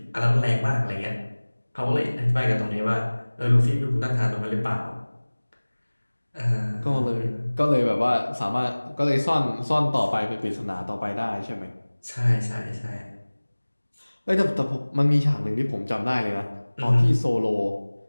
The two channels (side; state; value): both; inverted; correlation -1.00